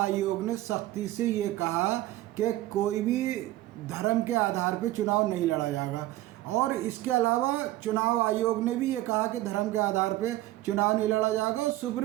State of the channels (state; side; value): quieter; left; 16.1 dB